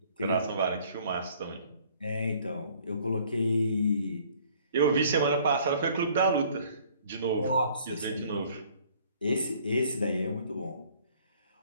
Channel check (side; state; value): both; inverted; correlation -0.58